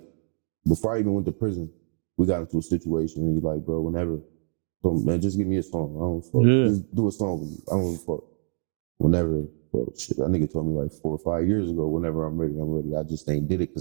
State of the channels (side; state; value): left; silent; 61 dB below the other